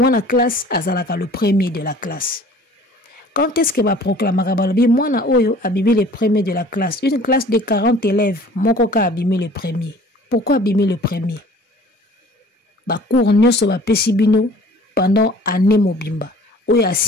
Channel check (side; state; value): both; normal; correlation 0.49